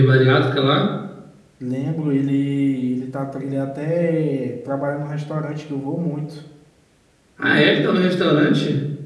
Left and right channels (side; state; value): both; identical; correlation 1.00